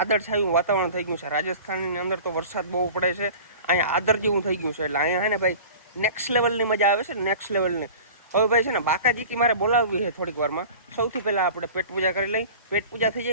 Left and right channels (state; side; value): inverted; both; correlation -0.39